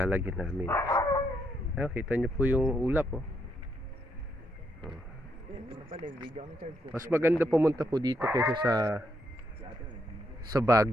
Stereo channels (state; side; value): normal; both; correlation 0.77